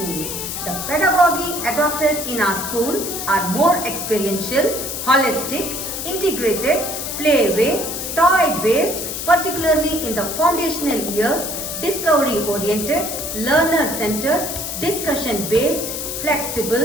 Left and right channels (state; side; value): noise; left; hiss, 5 dB below the sound